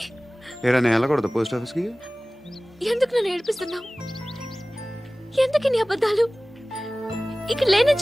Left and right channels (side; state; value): both; normal; correlation 0.98